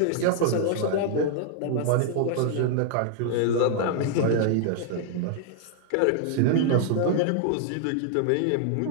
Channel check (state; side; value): different; both; correlation -0.01